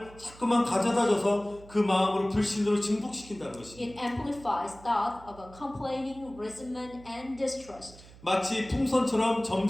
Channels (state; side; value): noise; right; hum, 20 dB below the sound